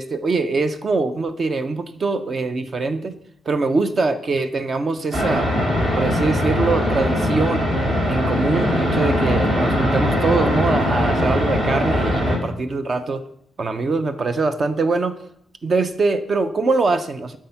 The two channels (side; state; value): both; normal; correlation 0.81